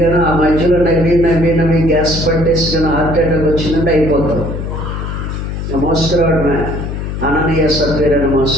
కానీ ఆ మధ్యలో నవ్వి గ్యాస్ పట్టేసి కానీ హార్ట్ అటాక్ వచ్చిందంటే అయిపోతాం. మోసుకురావడమే అననీయ సభ్యులను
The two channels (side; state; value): left; noise; hum, 5 dB below the sound